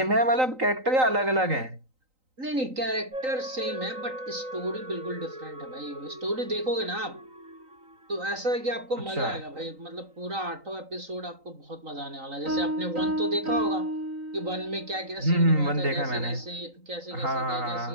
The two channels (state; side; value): late; left; 3.9 ms